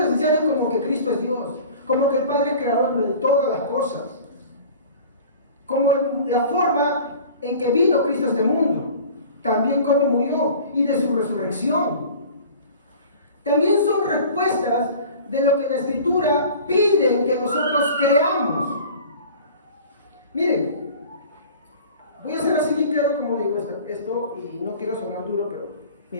como que Cristo es Dios, como que el Padre es creador de todas las cosas, como la forma en que vino Cristo a este mundo, también cómo murió y de su resurrección. También son respuestas de lo que la Escritura pide que nosotros creamos. Miren, voy a hacer así bien claro como digo esto y no quiero sonar duro, pero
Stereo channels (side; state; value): both; inverted; correlation -0.42